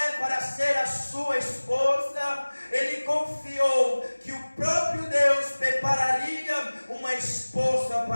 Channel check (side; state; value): both; inverted; correlation -1.00